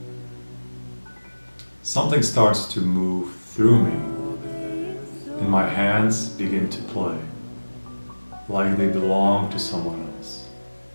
Something starts to move through me, and my hands begin to play, like they belong to someone else.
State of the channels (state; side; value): inverted; both; correlation -1.00